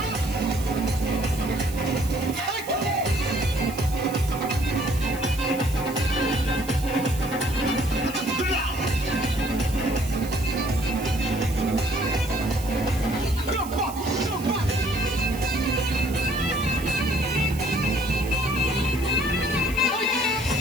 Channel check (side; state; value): right; noise; hiss, 15 dB below the sound